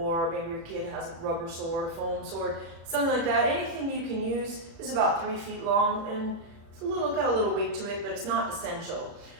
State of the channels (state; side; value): late; left; 36 ms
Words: maybe your kid has a rubber sword, a foam sword, something like that. Anything you can use. This is about 3 feet long and it's got a little weight to it, but it's not essential.